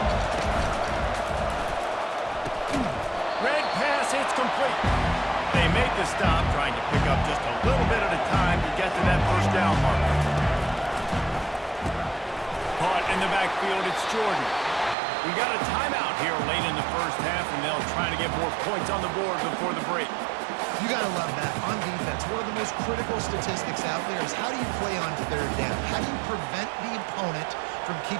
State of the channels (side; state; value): left; drops out; at 15.0 s